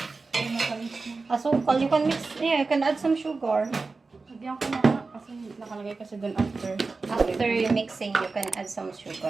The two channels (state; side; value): quieter; left; 4.0 dB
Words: Ay, makalis na. Asukal, you can mix, yeah, you can add some sugar. Lagyan ko na nga. Kasi nakalagay kasi doon after. After mixing, you can add some